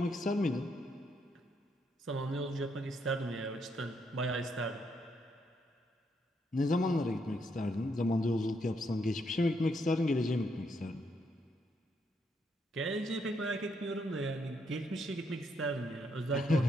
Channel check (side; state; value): both; normal; correlation 0.76